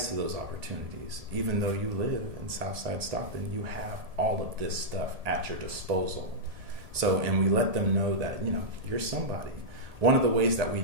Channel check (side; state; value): left; late; 1.7 ms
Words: to those opportunities. Even though you live in Southside Stockton, you have all of this stuff at your disposal. So, and we let them know that you're somebody. One of the ways that we